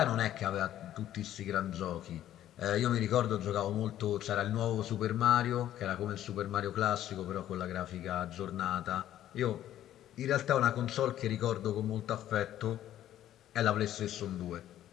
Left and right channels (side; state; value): right; quieter; 12.2 dB